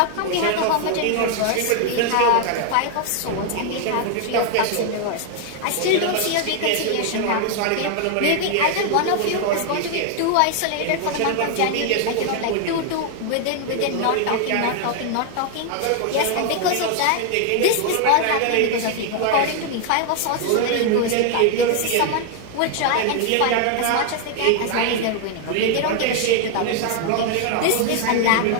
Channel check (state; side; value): different; both; correlation 0.00